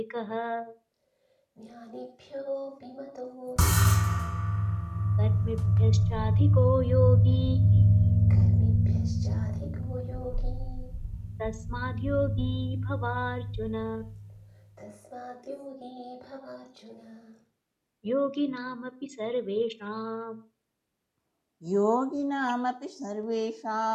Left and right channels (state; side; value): identical; both; correlation 1.00